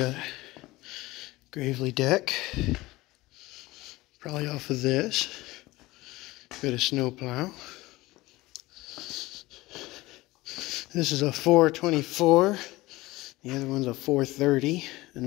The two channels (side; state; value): right; quieter; 19.5 dB